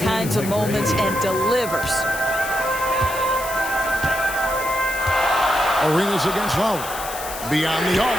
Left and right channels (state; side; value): noise; left; hiss, 10 dB below the sound